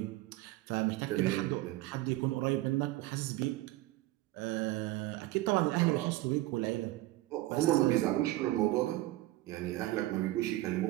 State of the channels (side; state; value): left; quieter; 17.4 dB